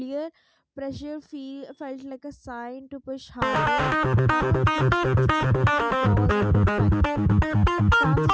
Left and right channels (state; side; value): identical; both; correlation 1.00